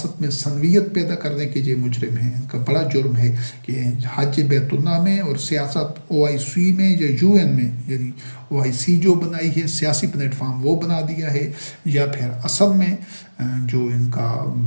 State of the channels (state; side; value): inverted; both; correlation -1.00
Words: میں سنویت پیدا کرنے کے یہ مجرم ہیں۔ ان کا بڑا جرم ہے کہ حج بیت اللہ میں اور سیاست OIC میں یا UN میں، یعنی OIC جو بنائی ہے سیاسی پلیٹ فارم وہ بنا دیا ہے، یا پھر اصل میں جو ان کا